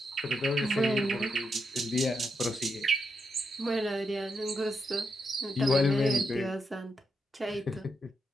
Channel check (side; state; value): both; normal; correlation 0.82